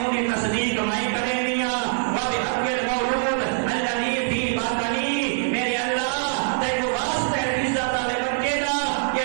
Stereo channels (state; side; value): silent; left; digital silence